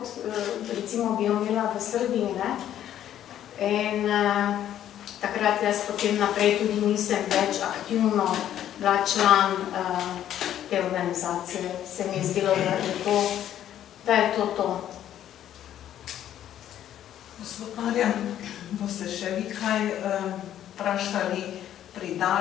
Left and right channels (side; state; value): right; quieter; 11.2 dB